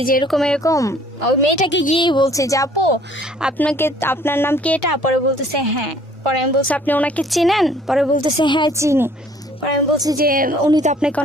যে এরকম এরকম, ওই মেয়েটাকে গিয়েই বলছি যে আপু আপনার নাম কি এটা? পরে বলতেছে হ্যাঁ। পরে আমি বলছি আপনি ওনাকে চেনেন? পরে বলতেছে হ্যাঁ চিনি। পরে আমি বলছি যে উনি তো আপনাকে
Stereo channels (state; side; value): normal; both; correlation 0.57